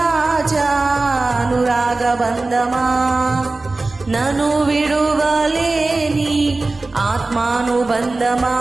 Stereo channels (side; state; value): left; quieter; 3.3 dB